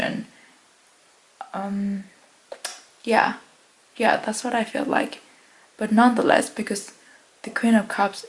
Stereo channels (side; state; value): both; identical; correlation 1.00